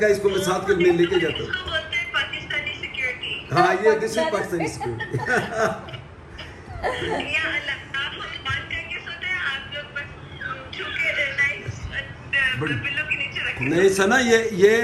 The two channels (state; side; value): identical; both; correlation 1.00